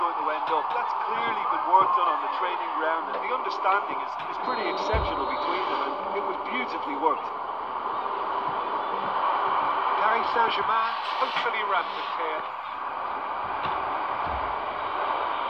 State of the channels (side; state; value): both; identical; correlation 1.00